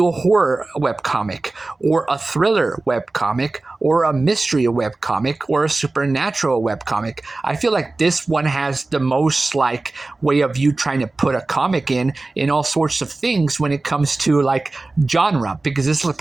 a horror webcomic or a thriller webcomic or a mystery webcomic or a supernatural webcomic. I feel like this one has the most like way of you trying to put a comic in all sorts of things when it comes to like genre, because this is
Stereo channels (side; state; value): left; quieter; 3.3 dB